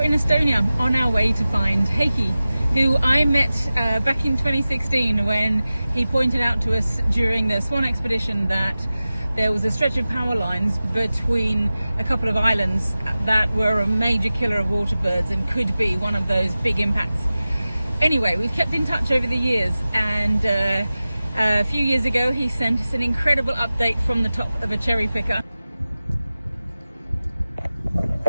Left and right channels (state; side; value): inverted; both; correlation -0.96